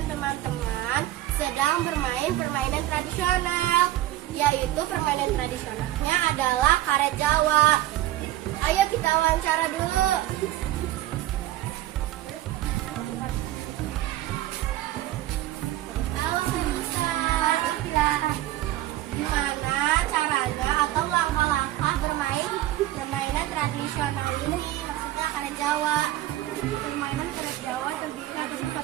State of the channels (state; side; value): quieter; left; 14.7 dB